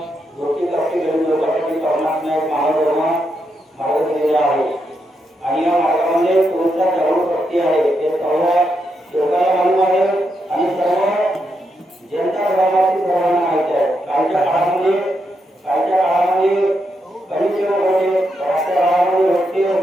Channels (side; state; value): both; normal; correlation 0.82